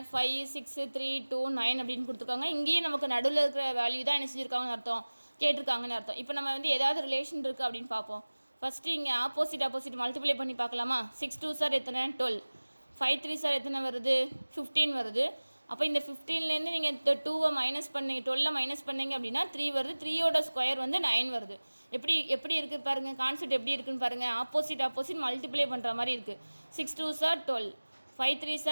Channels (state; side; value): inverted; both; correlation -1.00